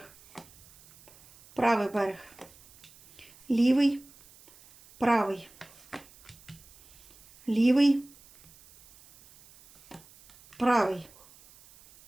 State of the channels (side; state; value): right; noise; hiss, 25 dB below the sound